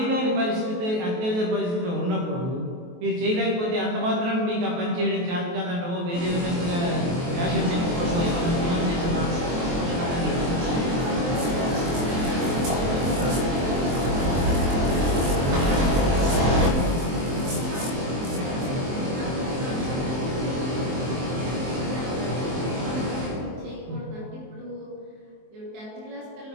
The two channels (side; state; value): left; late; 23 ms